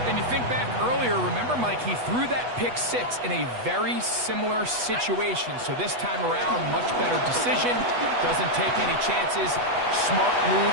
And you think back earlier, remember, Mike, he threw that pick 6 in a very similar situation. So this time around, much better decision. Doesn't take any chances. Smart move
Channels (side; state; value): left; late; 8.2 ms